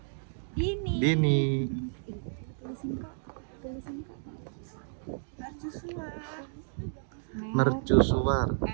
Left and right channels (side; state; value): left; silent; digital silence